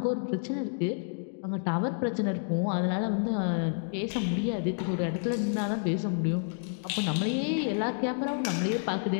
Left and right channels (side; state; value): right; silent; digital silence